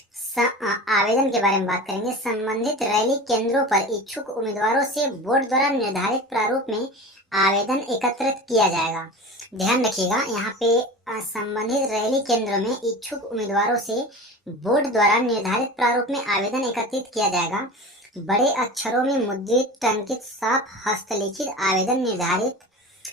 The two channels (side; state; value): both; normal; correlation 0.33